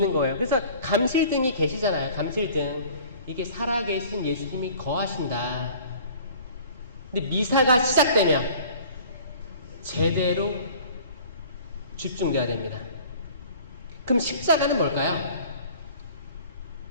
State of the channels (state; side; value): inverted; both; correlation -0.47